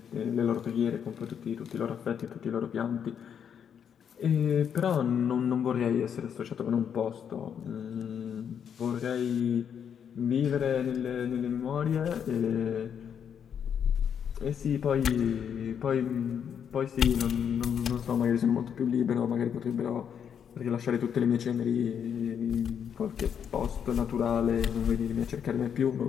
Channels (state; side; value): quieter; right; 8.0 dB